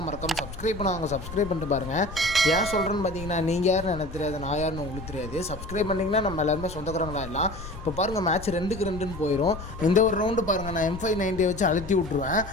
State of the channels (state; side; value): noise; left; rumble, 11 dB below the sound